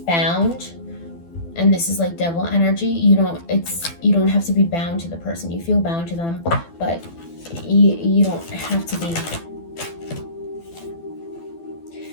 Bound, and this is like devil energy. You don't have to be bound to the person. You feel bound to them, but you don't have to be.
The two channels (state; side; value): late; right; 12 ms